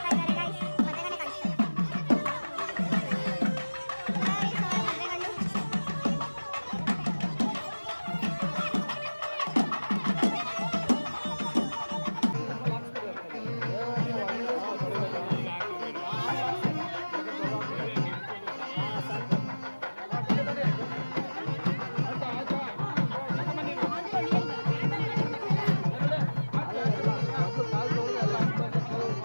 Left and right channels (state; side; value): inverted; both; correlation -1.00